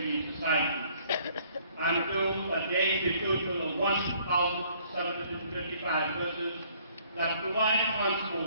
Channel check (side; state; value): both; inverted; correlation -0.61